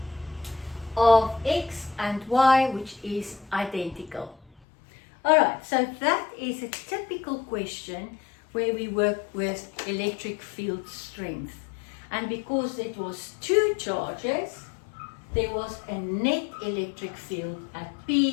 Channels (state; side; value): drops out; right; at 4.6 s